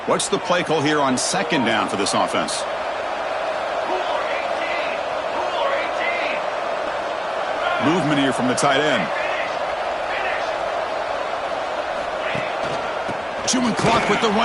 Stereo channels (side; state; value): both; identical; correlation 1.00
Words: What's the play call here on 2nd down for this offense? Movement here from the tight end. Chewing clock with the